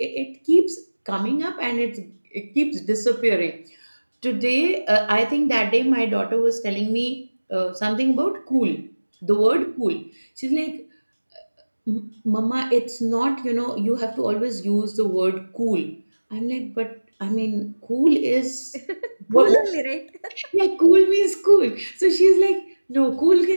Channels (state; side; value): inverted; both; correlation -1.00